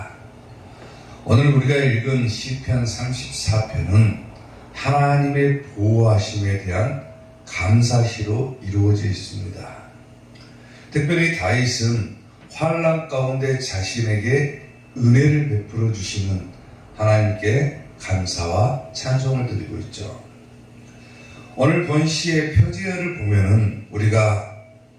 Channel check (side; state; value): both; identical; correlation 1.00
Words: 오늘 우리가 읽은 시편 34편은 하나님의 보호하심에 대한 감사시로 이루어져 있습니다. 특별히 다윗은 환난 가운데 자신에게 은혜를 베풀어 주시는 하나님께 감사와 찬송을 드리고 있죠. 오늘 본시의 표지어를 보면은 우리가